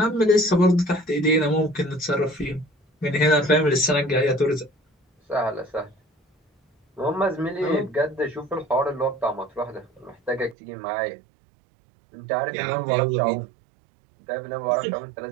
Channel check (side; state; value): left; drops out; at 10.6 s